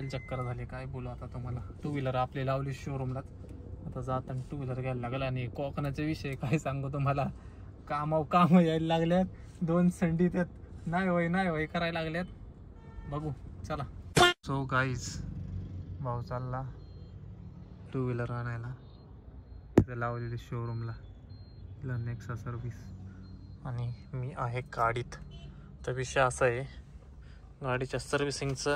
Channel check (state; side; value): identical; both; correlation 1.00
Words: चक्कर झाले. काय बोलू आता तुम्हाला. 2 व्हीलर आपली लावली शोरूमला, आता जाताना 2 व्हीलर घ्यायला लागेल. आणि कोकणाचा विषय काय सांगू तुम्हाला, काम यायला लागल्यात, 2 संडी त्यात नाही होय करायला लागल्यात. बघू चला. सो गाईज भाऊ चालला 2 व्हीलर आणायला, तिथे लावलेली शोरूमला, नेक्सा सर्व्हिस, आणि मी आहे गाडीत. तर विषय असा आहे, गाडीच्या